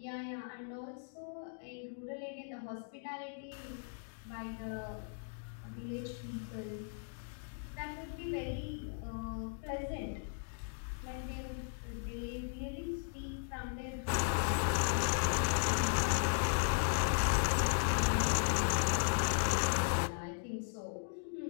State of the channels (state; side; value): silent; right; digital silence